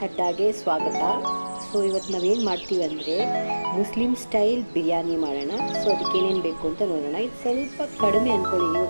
ಅಡ್ಡಾಗೆ ಸ್ವಾಗತ. So ಇವತ್ತು ನಾವೇನು ಮಾಡ್ತೀವಿ ಅಂದರೆ ಮುಸ್ಲಿಂ ಸ್ಟೈಲ್ ಬಿರಿಯಾನಿ ಮಾಡೋಣ. ಸೊ ಅದಕ್ಕೆ ಏನೇನು ಬೇಕು ಅಂತ ನೋಡೋಣ. ಇದು ಸ್ವಲ್ಪ ಕಡಿಮೆ ಅಂದ್ಕೊಳ್ಳಿ,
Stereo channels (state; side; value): inverted; both; correlation -1.00